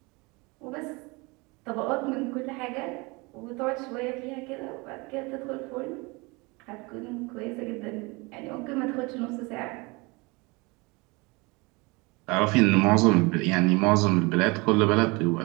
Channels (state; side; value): quieter; left; 26.4 dB